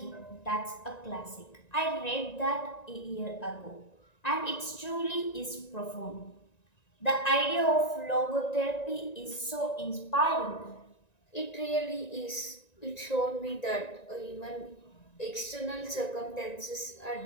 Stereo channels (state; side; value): late; right; 1.9 ms